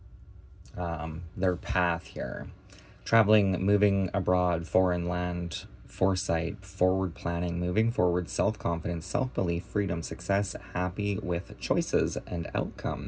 their path here. Traveling, moving abroad, foreign land, foresight, forward planning, moving forward, self-confidence, self-belief, freedom, success, happy with choices and outcome.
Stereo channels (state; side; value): identical; both; correlation 1.00